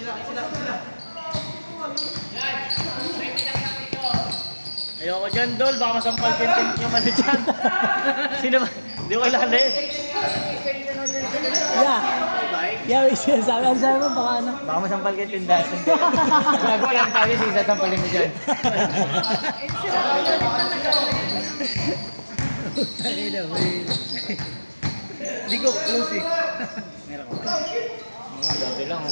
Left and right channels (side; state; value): both; inverted; correlation -1.00